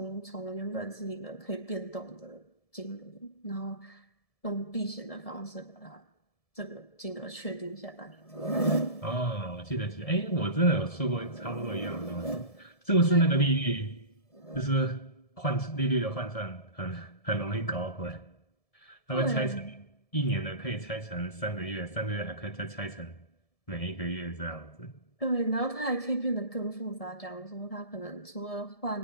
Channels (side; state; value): right; late; 1.7 ms